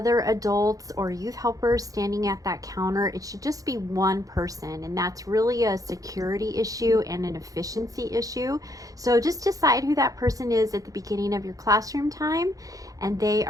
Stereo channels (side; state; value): left; late; 0.17 ms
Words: adults or youth helpers standing at that counter. It should just be one person, and that's really a security issue and an efficiency issue. So just decide who that person is at the beginning of your classroom time, and they